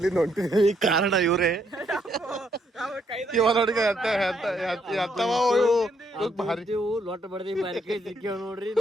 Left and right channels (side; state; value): both; normal; correlation 0.73